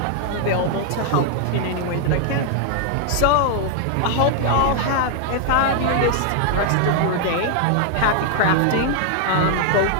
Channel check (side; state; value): both; different; correlation 0.00